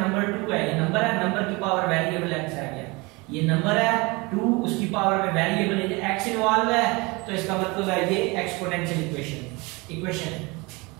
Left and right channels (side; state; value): left; quieter; 25.8 dB